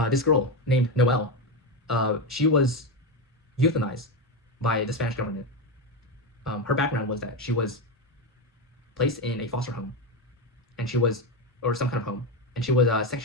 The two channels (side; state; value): both; normal; correlation 0.12